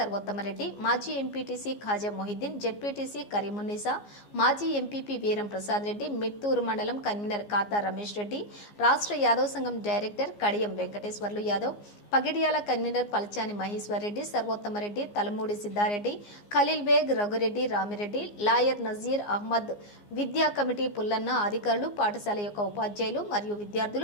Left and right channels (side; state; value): right; late; 15 ms